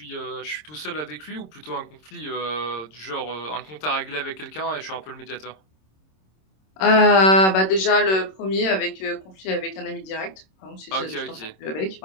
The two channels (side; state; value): right; late; 26 ms